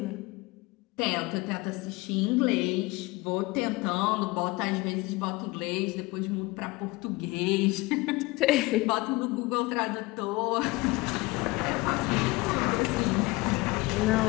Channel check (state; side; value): quieter; right; 22.4 dB